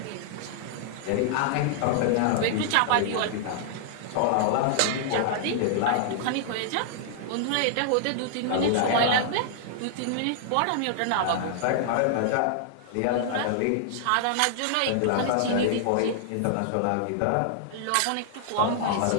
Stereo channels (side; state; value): both; different; correlation -0.01